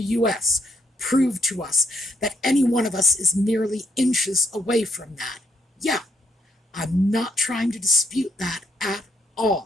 US, proved to us that any one of us is merely inches away from that. Yeah, I'm not trying to dispute that at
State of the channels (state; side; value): normal; both; correlation 0.75